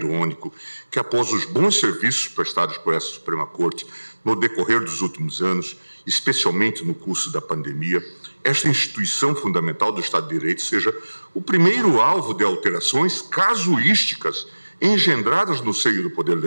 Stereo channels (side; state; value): both; inverted; correlation -1.00